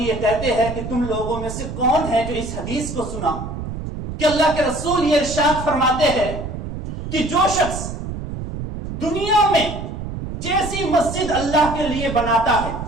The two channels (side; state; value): right; noise; rumble, 7 dB below the sound